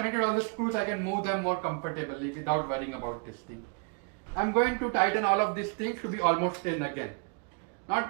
all the screws, I can move them more comfortably without worrying about this thing. I'm going to tighten all of these things to be almost in again. Not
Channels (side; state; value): left; quieter; 37.5 dB